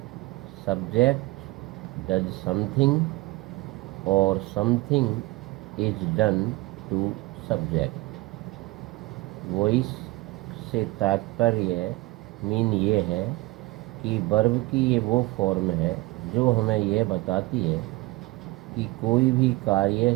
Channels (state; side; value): quieter; left; 21.4 dB